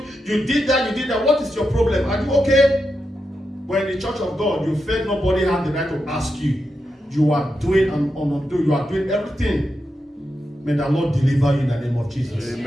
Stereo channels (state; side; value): normal; both; correlation 0.87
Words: You did that. What is your problem? Are you okay? When in the church of God, you felt nobody had the right to ask you. You are doing and undo. You are doing everything. May the Lord deliver you in the name of Jesus.